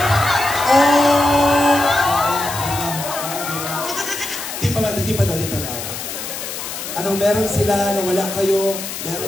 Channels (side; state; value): left; noise; hiss, 7 dB below the sound